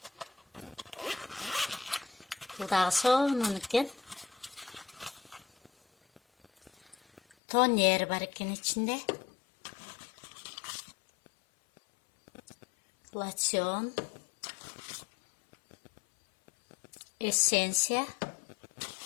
Бул дагы сонун экен. Тонер бар экен ичинде. Лосьон. Эссенция.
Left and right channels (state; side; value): drops out; right; at 7.2 s